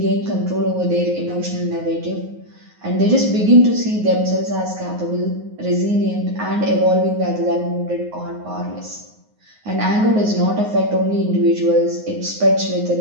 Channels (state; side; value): late; left; 9.5 ms